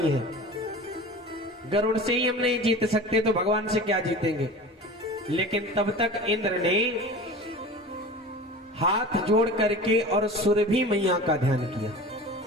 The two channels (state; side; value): normal; both; correlation 0.36